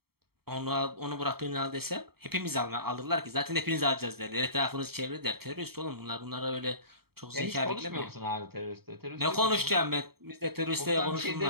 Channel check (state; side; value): late; left; 0.95 ms